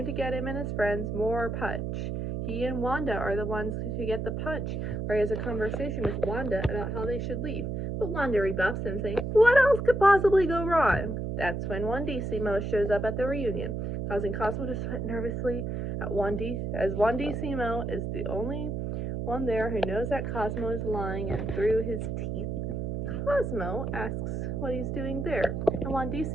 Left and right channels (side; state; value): right; noise; hum, 3 dB below the sound